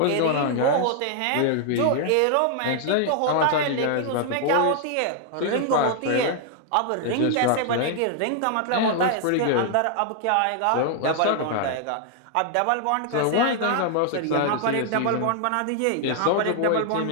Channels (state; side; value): different; both; correlation 0.00